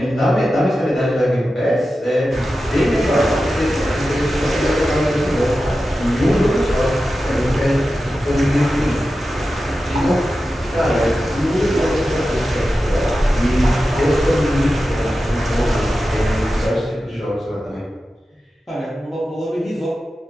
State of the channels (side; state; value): both; normal; correlation 0.92